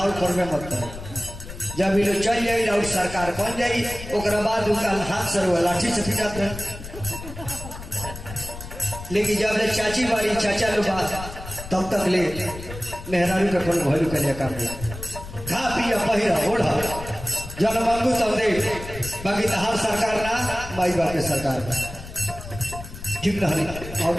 करवे मत करो जब ये लोग चल जाए और सरकार बन जाए ओकरा बाद उनका हाथ से रुआ लाठी से पिटाते हैं लेकिन जब ले चाची वाली चाचा लोग तब तक ले मेहरारू के कोनो भैलू के लिए काम नहीं खा पिया पहिरा ओढ़ा जब मांगू तब दे बाकी हर सरकार ना माई बाप के सरकार बा ठीक ना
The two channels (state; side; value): noise; left; rumble, 12 dB below the sound